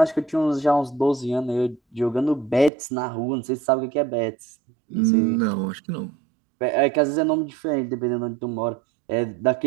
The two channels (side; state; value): left; drops out; at 2.7 s